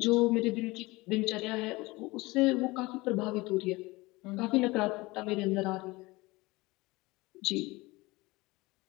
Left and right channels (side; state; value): right; quieter; 22.0 dB